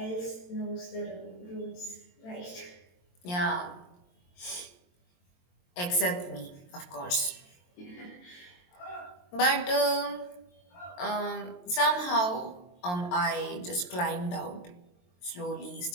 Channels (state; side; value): late; right; 22 ms